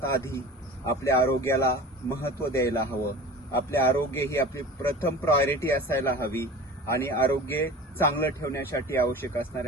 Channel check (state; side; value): normal; both; correlation 0.37